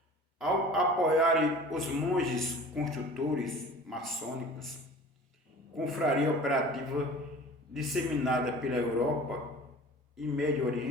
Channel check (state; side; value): normal; both; correlation 0.43